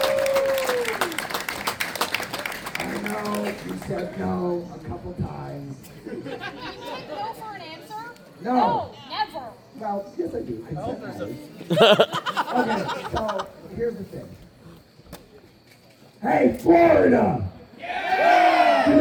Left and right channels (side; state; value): both; identical; correlation 1.00